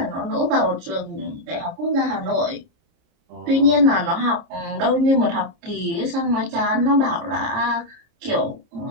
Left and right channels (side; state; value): left; late; 29 ms